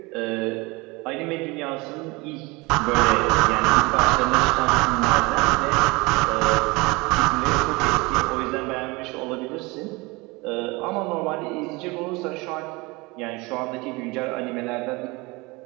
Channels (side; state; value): left; quieter; 24.8 dB